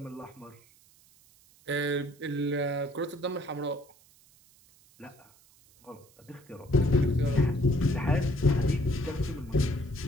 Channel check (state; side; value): noise; right; hiss, 28 dB below the sound